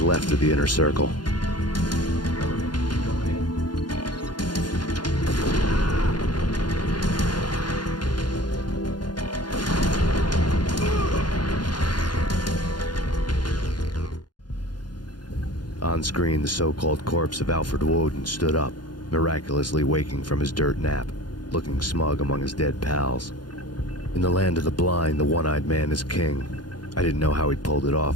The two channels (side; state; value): right; late; 0.71 ms